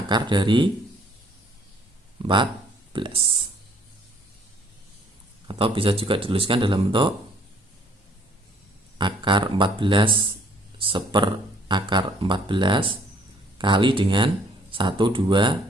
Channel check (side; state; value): both; normal; correlation 0.60